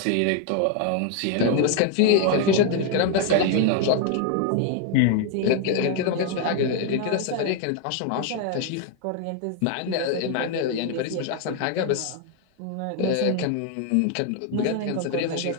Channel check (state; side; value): different; both; correlation 0.01